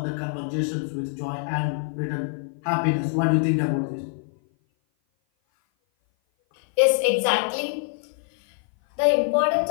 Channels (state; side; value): silent; right; 57 dB below the other